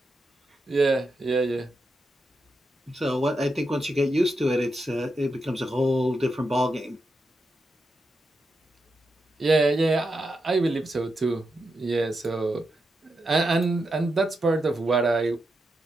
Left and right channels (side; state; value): both; normal; correlation 0.86